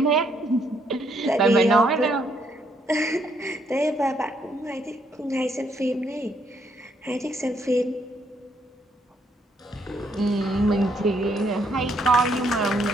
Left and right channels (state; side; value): normal; both; correlation 0.72